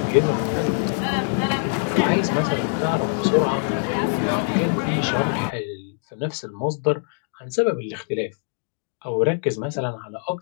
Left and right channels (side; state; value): right; silent; 61 dB below the other